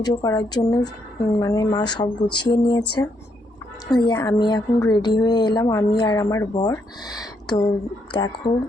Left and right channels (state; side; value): normal; both; correlation 0.76